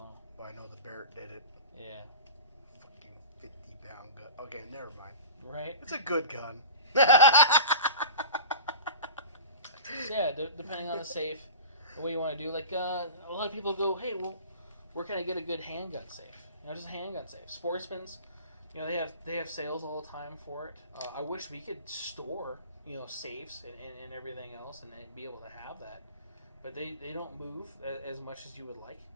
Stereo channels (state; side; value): inverted; both; correlation -0.36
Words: Well, I know the Barrett did it. Yeah. Fucking 50-pound gun. Okay, never mind. Right. It's a good gun. So yeah, depending on the safe, what you want to do. Like a lot of people go, hey, well, where can I get a good handgun safe? Just a handgun safe. Sportsman's, they have sales all the time for it. I wish we could store, safes and everything else and be able to have that, but they don't move as much as you would like.